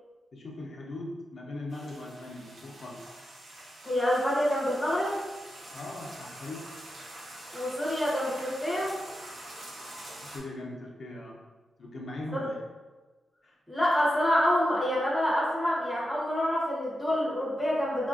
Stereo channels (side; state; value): both; normal; correlation 0.89